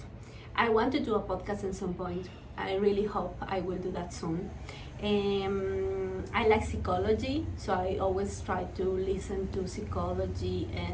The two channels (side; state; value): both; identical; correlation 1.00